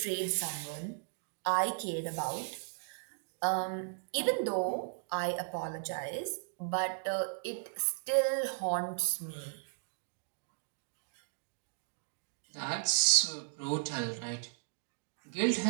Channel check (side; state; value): left; silent; digital silence